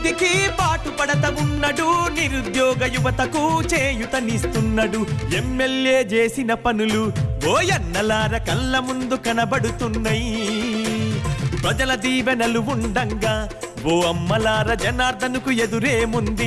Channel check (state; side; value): identical; both; correlation 1.00